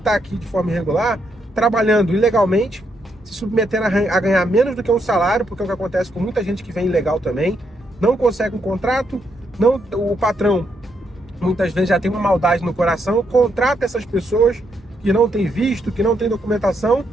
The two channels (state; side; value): normal; both; correlation 0.77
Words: aqui de forma irregular, trabalhando ilegalmente, se submetendo a ganhar menos do que um salário, porque é o que acontece com muita gente que vem ilegal também, não consegue um contrato, o patrão muitas vezes já tem uma maldade no coração, contrata essas pessoas que não têm visto, que não têm documentação,